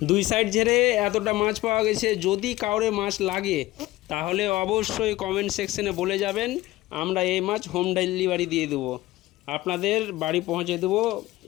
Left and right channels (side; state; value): right; quieter; 17.7 dB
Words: দুই সাইড ঝেড়ে এতটা মাছ পাওয়া গেছে। যদি কাউরে মাছ লাগে তাহলে অবশ্যই কমেন্ট সেকশনে বলে যাবেন, আমরা এই মাছ হোম ডেলিভারি দিয়ে দেবো, আপনাদের বাড়ি পৌঁছে দেবো